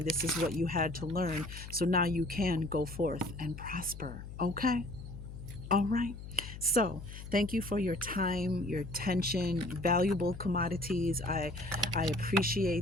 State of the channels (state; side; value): noise; left; hum, 11 dB below the sound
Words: This is what you had to learn. So now you can go forth and prosper. Okay? All right. So, thank you for your time, your attention, valuable commodities. I